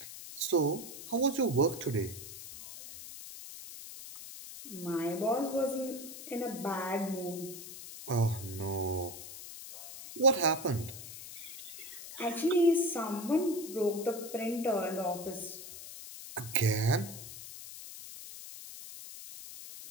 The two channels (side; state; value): left; noise; hiss, 12 dB below the sound